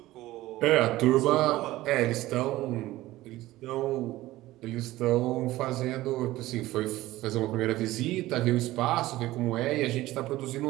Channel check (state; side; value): quieter; left; 16.9 dB